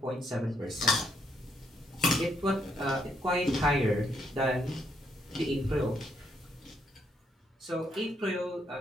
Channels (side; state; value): both; normal; correlation 0.75